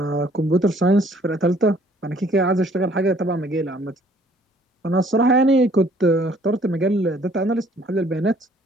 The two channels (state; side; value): normal; both; correlation 0.59